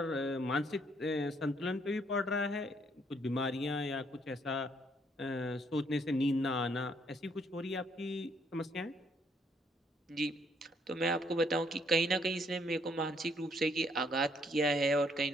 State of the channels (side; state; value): both; normal; correlation 0.69